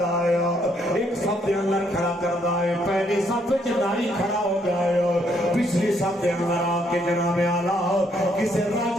ایک صف دے اندر کھڑا کر دائے. پہلی صف نائی کھڑا ہو گیا, پچھلی صف دے اندر آ کے جناب اعلیٰ کسے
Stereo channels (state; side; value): normal; both; correlation 0.71